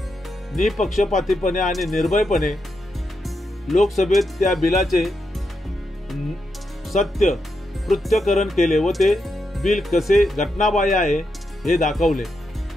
निपक्षपातीपणे आणि निर्भयपणे लोकसभेत त्या बिलाचे सत्य पृथ्थकरण केले व ते बिल कसे घटनाबाह्य आहे हे दाखवले.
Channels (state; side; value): normal; both; correlation 0.84